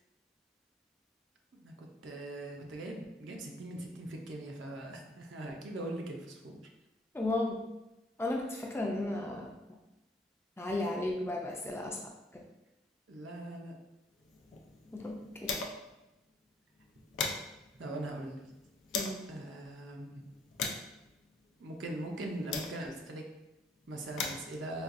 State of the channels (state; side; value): normal; both; correlation 0.64